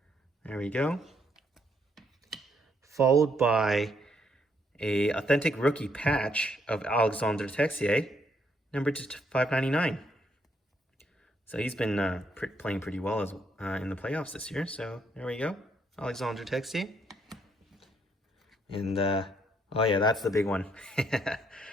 There we go. Followed by a authentic rookie patch of Alexandre Texier, numbered to 599. So he's been playing pretty well as in the playoffs this year. So there we go, Alexandre Texier. And oh yeah, that's the big one.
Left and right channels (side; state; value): both; normal; correlation 0.72